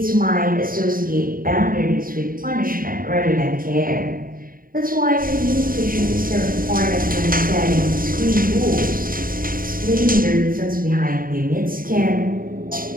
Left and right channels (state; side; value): late; left; 0.41 ms